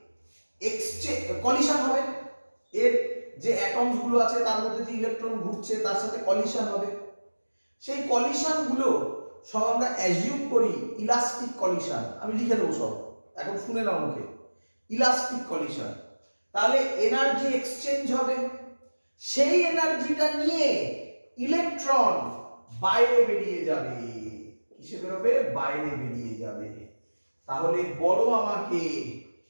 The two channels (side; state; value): both; inverted; correlation -1.00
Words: এক্সচেঞ্জ, কলিশন হবে। এর যে অ্যাটমস গুলো আছে তার মধ্যে যে ইলেকট্রন ঘুরছে তার সাথে কলিশন হবে। সেই কলিশন গুলো সব আমরা অ্যাজিউম করি ইলাস্টিক কলিশন। আমি লিখে দেবো সব, এখন শুনে নাও মুখে। Elastic collision. তাহলে এনার্জি এক্সচেঞ্জ হবে। সেই এনার্জিটা নিয়ে ইলেকট্রন বাইরে বেরিয়ে যাবে। কিসে বেরোবে? বাইরে বেরিয়ে যাবে। তাহলে বলো আমাকে,